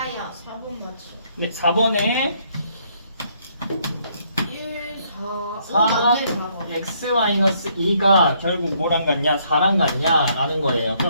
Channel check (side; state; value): both; inverted; correlation -0.69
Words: 4번 맞지. 네, 4번에 1, 4. 4번 x-2가 결국 뭐랑 같냐? 4랑 같냐? 라는 거예요.